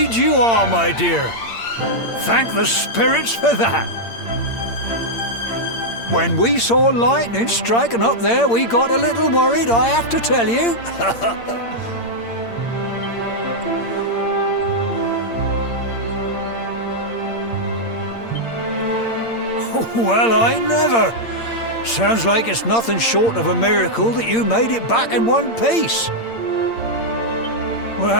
you are, my dear. Thank the spirits for that. When we saw lightning striking up there, we got a little worried, I have to tell you. Well, I never. Sounds like it's nothing short of a miracle that you made it back in one piece.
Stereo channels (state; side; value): late; right; 8.7 ms